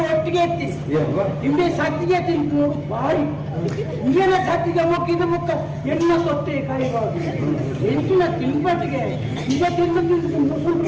ಒಟ್ಟಿಗೆ ಎತ್ತಿ ನಿಂಬೆ ಸತ್ತಿಗೆ ತಿಂತು ಬಾರಿ ಇಂಗೇನ ಸತ್ತಿಗೆ ಮುಕ್ಕಿದ ಮುಕ್ಕ ಎಣ್ಣ ತೊಟ್ಟೆ ಕೈಬಾರ್ದು ಎಂಟಿನ ತಿನ್ಬಟ್ಟಿಗೆ ಈಗ ತಿಂದು ತಿಂದು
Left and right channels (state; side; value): identical; both; correlation 1.00